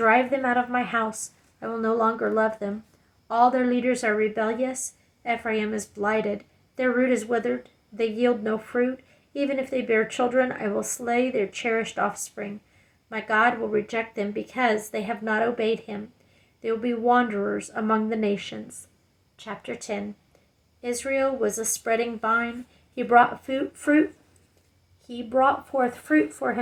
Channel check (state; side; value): identical; both; correlation 1.00